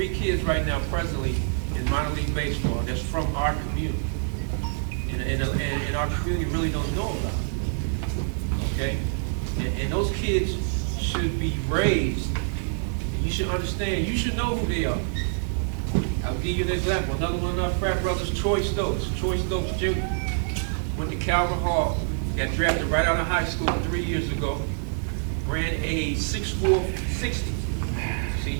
kids right now presently in minor league baseball that's from our community. And our community really don't know about it. Okay? And those kids should be raised. You should understand, you should know who they are. I'll give you an example. Another one of our frat brothers, Troy Stokes Jr. Went to Calvin Hall, got drafted right out of high school 3 years ago, ran a 6'4", 60.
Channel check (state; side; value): silent; left; digital silence